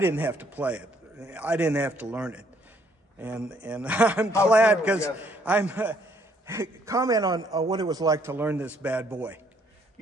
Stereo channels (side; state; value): both; normal; correlation 0.67